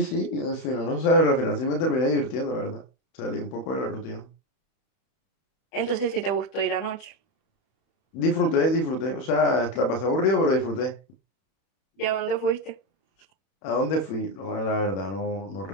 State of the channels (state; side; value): late; right; 31 ms